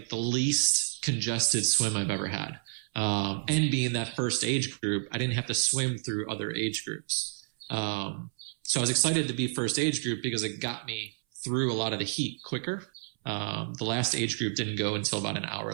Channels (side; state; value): left; silent; 58 dB below the other